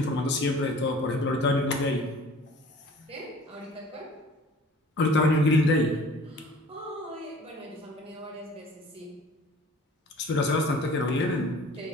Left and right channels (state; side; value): normal; both; correlation 0.48